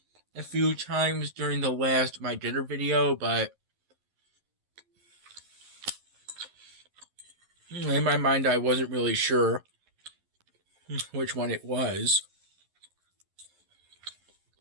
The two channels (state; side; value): late; left; 11 ms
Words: a few times during the last My Dinner video, but in my mind I wasn't really sure which one it was.